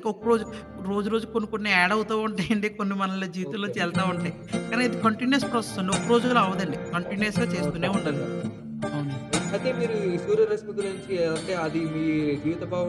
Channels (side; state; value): both; identical; correlation 1.00